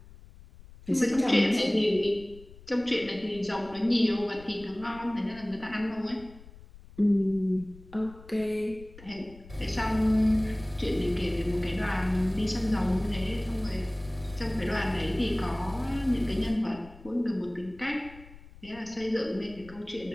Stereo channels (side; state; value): left; noise; rumble, 20 dB below the sound